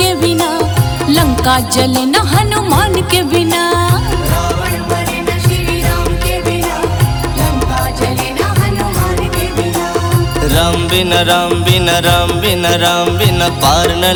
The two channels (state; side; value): identical; both; correlation 1.00